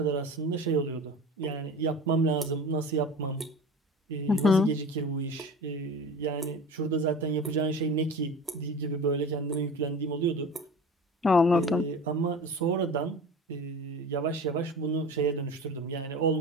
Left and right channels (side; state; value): both; normal; correlation 0.35